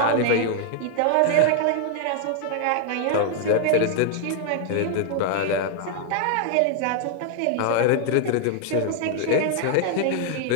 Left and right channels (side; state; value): both; different; correlation 0.00